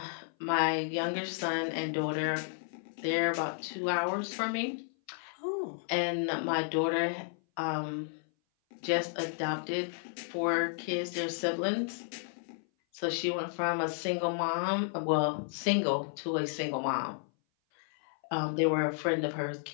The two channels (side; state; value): right; silent; 56 dB below the other